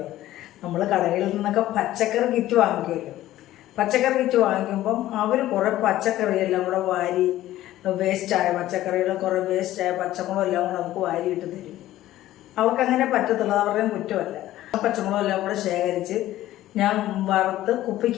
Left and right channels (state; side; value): quieter; right; 14.5 dB